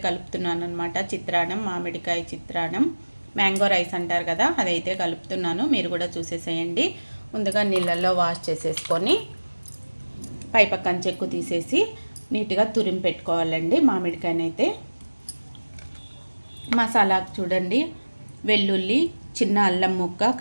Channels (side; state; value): both; inverted; correlation -1.00